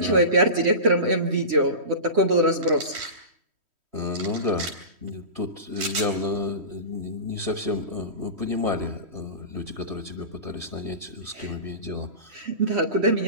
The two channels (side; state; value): left; late; 3.1 ms